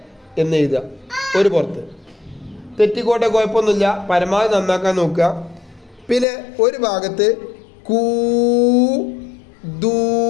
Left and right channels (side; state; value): right; drops out; at 6.2 s